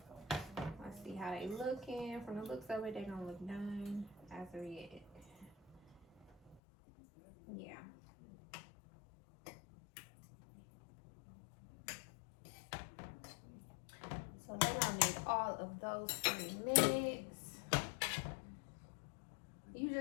Let's see how they looking. From the looks of it, they don't look done as of yet. Yeah. So then I'll need all of those 3 minutes. You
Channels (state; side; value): drops out; right; at 6.6 s